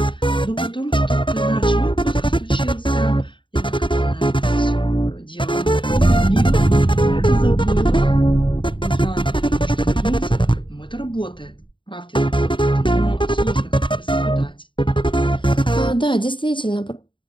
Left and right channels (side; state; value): right; late; 0.24 ms